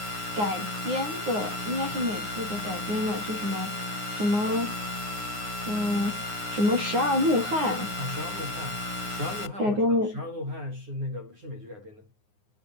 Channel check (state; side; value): late; left; 9.6 ms